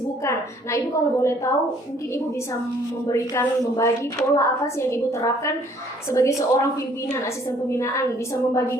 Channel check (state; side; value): normal; both; correlation 0.60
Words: Nah, Ibu kalau boleh tahu, mungkin Ibu bisa membagi pola apa sih yang Ibu terapkan sebagai seorang pimpinan, asisten pembinaan, bisa